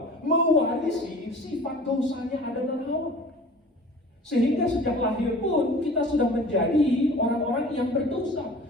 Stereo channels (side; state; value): both; normal; correlation 0.43